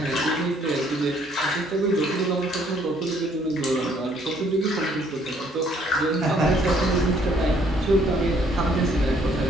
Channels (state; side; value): normal; both; correlation 0.64